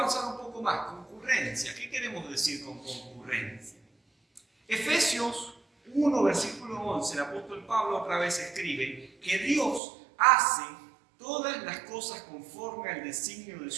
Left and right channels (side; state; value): left; drops out; at 9.8 s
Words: un poco más. Concurrencia. ¿Qué queremos decir con concurrencia? Efesios 1, versículo 11, el apóstol Pablo otra vez escribe que Dios hace todas las cosas conforme al designio de